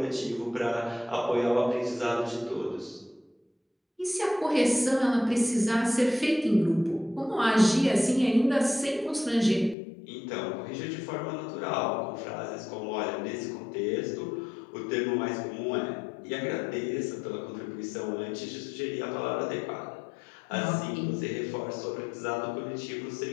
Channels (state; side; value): drops out; right; at 9.8 s